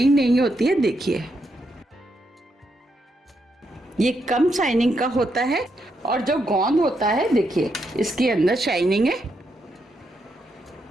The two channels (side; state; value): both; normal; correlation 0.80